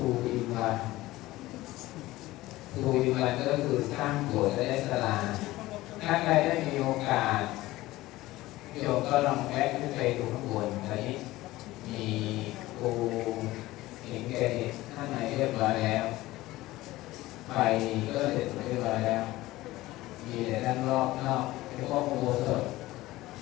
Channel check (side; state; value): right; quieter; 17.7 dB